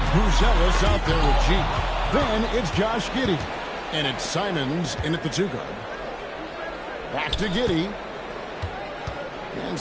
Brucelis out there with G. Then it's Josh Giddey. And it's Simons in at the 2 guard. Back to Giddey. And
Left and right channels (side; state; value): both; identical; correlation 1.00